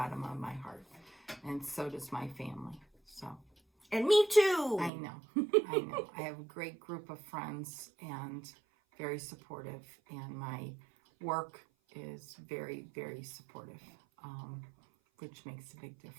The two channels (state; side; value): drops out; left; at 4.9 s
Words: of my heart. And so does my family. So. And me too. I know. I know. I have a great group of friends and very supportive. And my work is very, very supportive, which makes a big